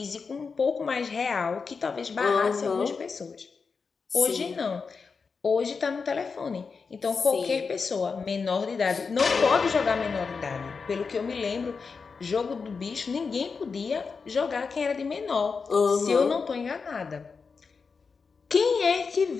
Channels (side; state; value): right; quieter; 5.1 dB